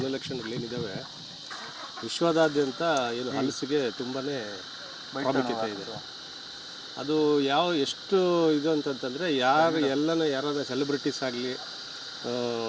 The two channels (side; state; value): both; identical; correlation 1.00